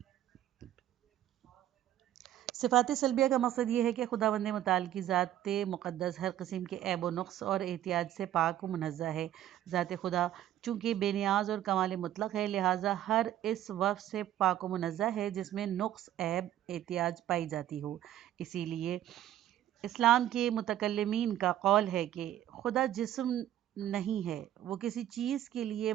صفات سلبیہ کا مقصد یہ ہے کہ خداوند متعال کی ذات مقدس ہر قسم کے عیب و نقص اور احتیاج سے پاک و منزہ ہے۔ ذات خدا چونکہ بے نیاز اور کمال مطلق ہے، لہٰذا ہر اس وصف سے پاک و منزہ ہے جس میں نقص، عیب، احتیاج پائی جاتی ہو۔ اسی لیے اسلام کے متکلمین کا قول ہے کہ خدا جسم نہیں ہے، وہ کسی چیز کے لیے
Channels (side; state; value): left; quieter; 12.3 dB